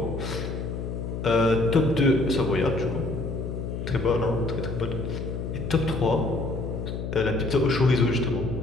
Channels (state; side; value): noise; left; hum, 5 dB below the sound